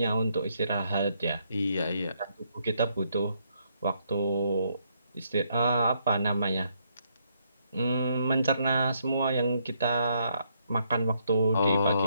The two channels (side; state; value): both; inverted; correlation -0.74